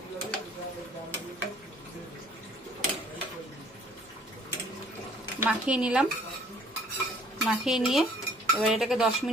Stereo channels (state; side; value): normal; both; correlation 0.57